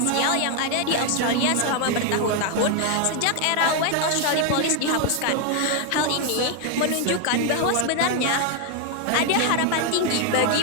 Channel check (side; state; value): both; different; correlation 0.00